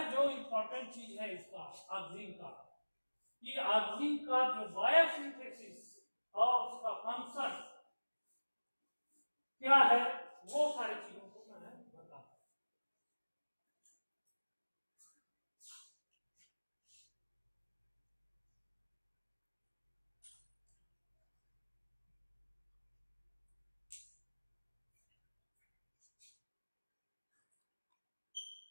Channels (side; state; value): both; inverted; correlation -1.00